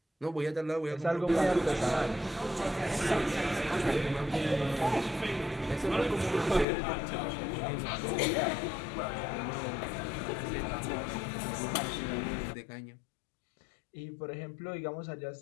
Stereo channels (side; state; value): right; drops out; at 6.7 s